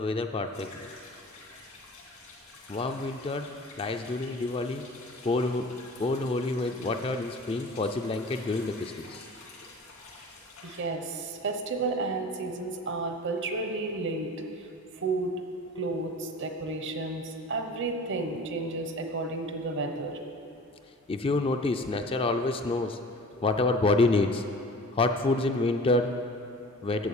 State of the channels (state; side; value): normal; both; correlation 0.41